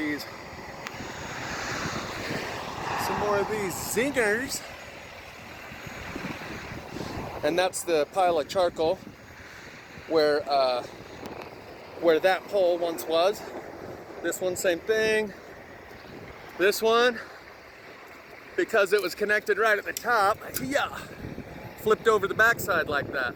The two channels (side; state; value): both; identical; correlation 1.00